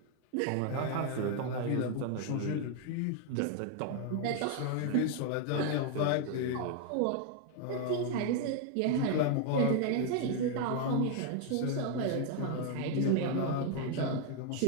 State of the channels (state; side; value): different; both; correlation 0.00